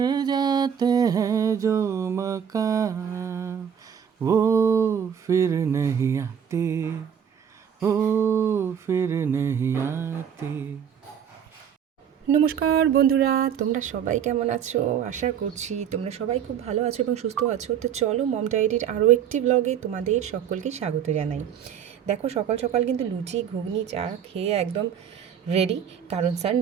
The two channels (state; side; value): quieter; left; 8.4 dB